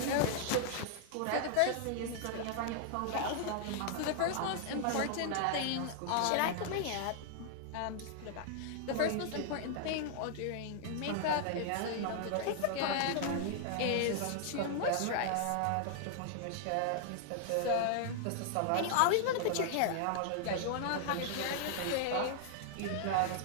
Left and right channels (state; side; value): different; both; correlation -0.01